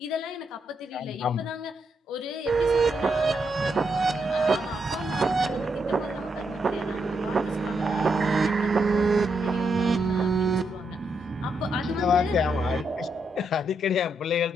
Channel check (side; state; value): both; normal; correlation 0.80